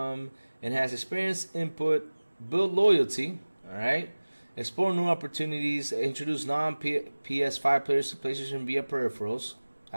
experience. Input. Build loyalty. Alright. Explore new opportunities. Introduce non-PS5 players to PlayStation via peripherals.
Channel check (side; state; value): both; inverted; correlation -1.00